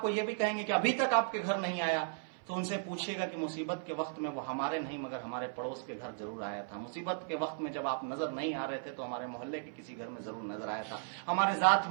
ये भी कहेंगे कि अभी तक आपके घर नहीं आया, तो उनसे पूछिएगा कि मुसीबत के वक्त में वो हमारे नहीं मगर हमारे पड़ोस के घर जरूर आया था। मुसीबत के वक्त में जब आप नजर नहीं आ रहे थे तो हमारे मोहल्ले के किसी घर में जरूर नजर आया था। हमारे जात,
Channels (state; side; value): silent; left; 54 dB below the other